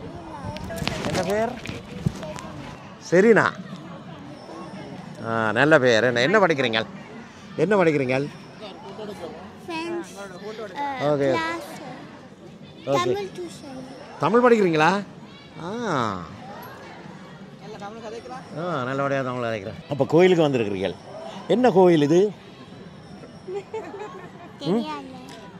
என்ன பேர்? சரிண்ணா. நல்ல பேர். என்ன படிக்கிறீங்க? ஓகே தமிழ் படிக்கிறீங்களா? நல்லபடியாக தமிழ் கதைக்கிறேன். அப்போ கோயிலுக்கு வந்திருக்கிறீர்கள். என்ன கோயில் இது?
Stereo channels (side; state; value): both; identical; correlation 1.00